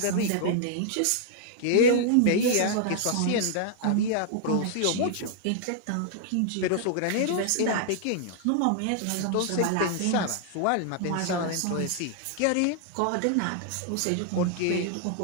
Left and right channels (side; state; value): both; different; correlation -0.01